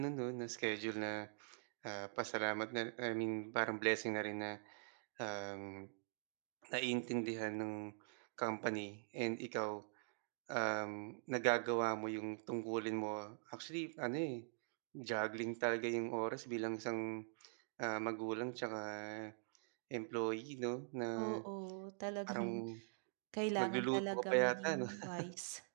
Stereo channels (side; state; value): left; silent; digital silence